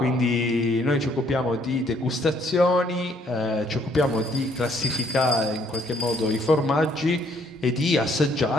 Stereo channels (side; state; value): both; normal; correlation 0.66